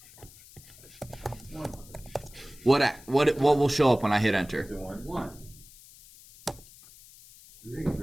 What will show up when I hit enter? Is it 1? 1.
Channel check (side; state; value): left; noise; hiss, 22 dB below the sound